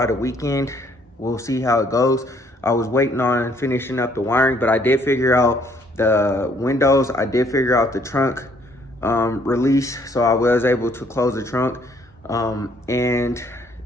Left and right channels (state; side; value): normal; both; correlation 0.65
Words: the weekend. We'll see how it goes. I was waiting on finishing up the wiring, but I did figure out the windows. I did figure out the trunk release, so I was able to close the trunk. And